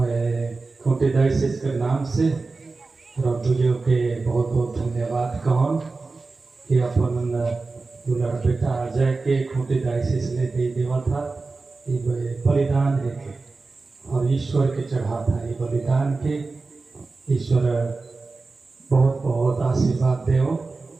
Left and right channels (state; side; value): quieter; left; 3.8 dB